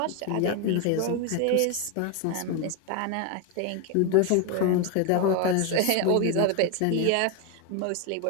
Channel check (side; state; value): both; different; correlation 0.01